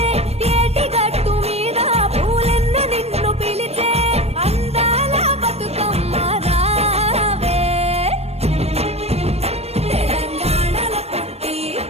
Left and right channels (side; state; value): left; late; 0.30 ms